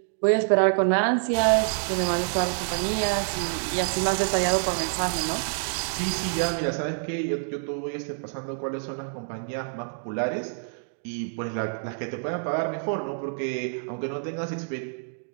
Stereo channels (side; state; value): left; silent; digital silence